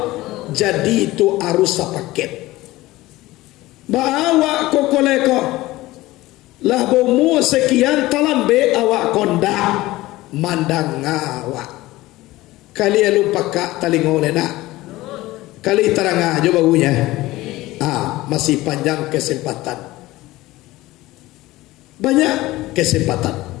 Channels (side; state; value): right; quieter; 18.2 dB